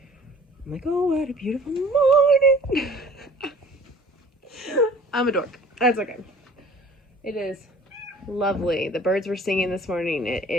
I'm like, oh, what a beautiful morning. I'm a dork. That's okay. It is lovely. The birds were singing this morning.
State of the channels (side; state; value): both; normal; correlation 0.49